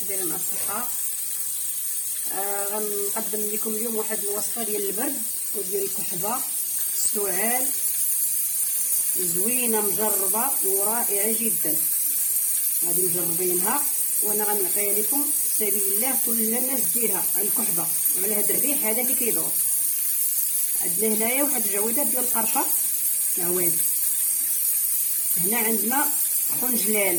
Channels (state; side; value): normal; both; correlation 0.94